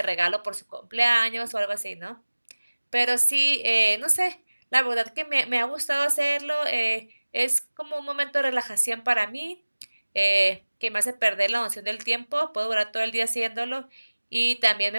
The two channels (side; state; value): both; inverted; correlation -1.00